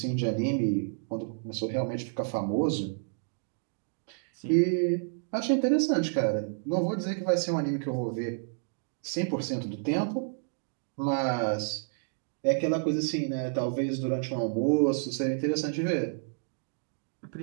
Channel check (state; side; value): silent; left; digital silence